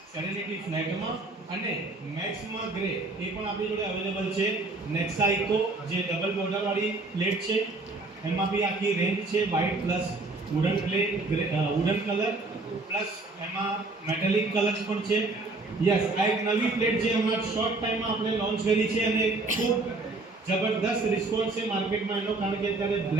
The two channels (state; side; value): quieter; left; 3.3 dB